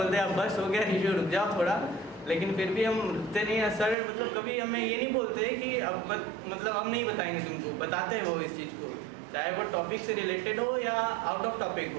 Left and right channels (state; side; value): drops out; left; at 4.0 s